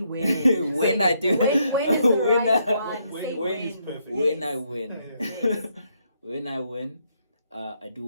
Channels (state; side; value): inverted; both; correlation -0.75